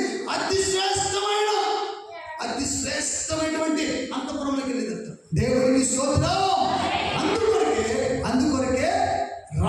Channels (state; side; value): identical; both; correlation 1.00